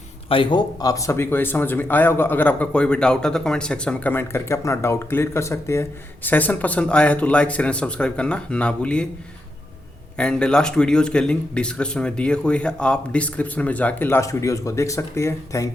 आई होप आप सभी को ये समझ में आया होगा। अगर आपका कोई भी डाउट है तो कमेंट सेक्शन में कमेंट करके अपना डाउट क्लियर कर सकते हैं। सेशन पसंद आया है तो लाइक शेयर एंड सब्सक्राइब करना ना भूलिए। एंड लास्ट वीडियोज़ के लिंक डिस्क्रिप्शन में दिए हुए हैं, आप डिस्क्रिप्शन में जाके लास्ट वीडियोज़ को देख सकते हैं।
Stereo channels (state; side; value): normal; both; correlation 0.84